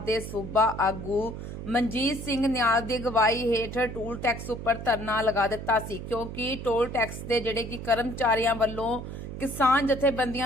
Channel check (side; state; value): right; noise; hum, 8 dB below the sound